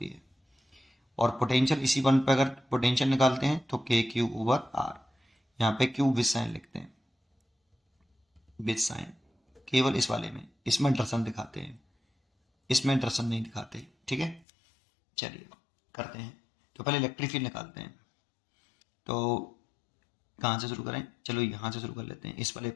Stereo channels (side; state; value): right; drops out; at 14.5 s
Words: है। और पोटेंशियल इसी पॉइंट पर अगर पोटेंशियल निकालते हैं तो के क्यू ओवर आर। यहाँ पे क्यू विद साइन लिखते हैं, विद साइन केवल इस वाले में, इसमें दर्शन दिखाते हैं, इसमें दर्शन नहीं दिखाते, ठीक है। चलिए करते हैं। तो पहले इलेक्ट्रिक फील्ड निकालते हैं। तो कहाँ से शुरू करें? चलो यहाँ से शुरू कर लेते हैं, इस वाले